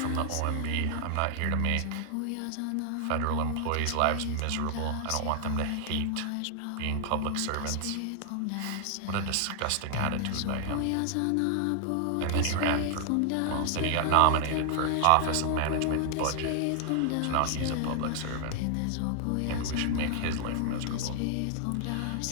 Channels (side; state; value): both; different; correlation 0.00